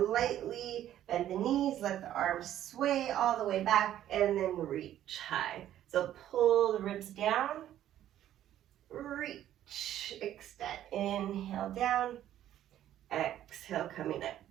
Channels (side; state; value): left; quieter; 12.0 dB